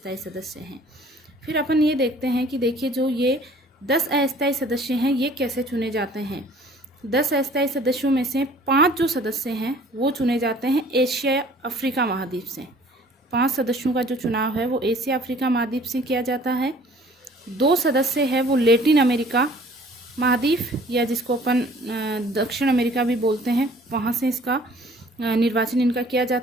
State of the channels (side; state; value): both; normal; correlation 0.53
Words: सदस्य हैं। फिर अपन ये देखते हैं कि देखिए जो ये 10 अस्थायी सदस्य हैं ये कैसे चुने जाते हैं। 10 अस्थायी सदस्यों में से 5 जो सदस्य हैं वो चुने जाते हैं एशिया अफ्रीका महाद्वीप से। 5 सदस्यों का जो चुनाव है वो एशिया अफ्रीका महाद्वीप से किया जाता है। 2 सदस्य है वो लैटिन अमेरिका महाद्वीप या जिसको अपन दक्षिण अमेरिका भी बोलते हैं, वहाँ से इसका निर्वाचन इनका किया